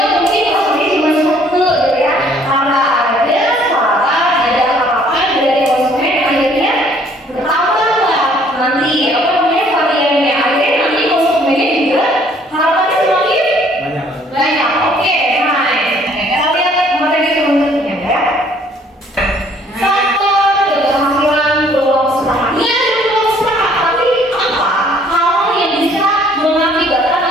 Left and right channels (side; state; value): both; normal; correlation 0.60